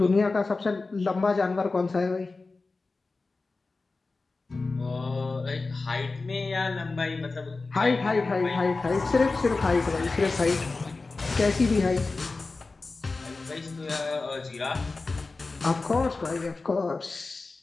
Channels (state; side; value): quieter; right; 3.7 dB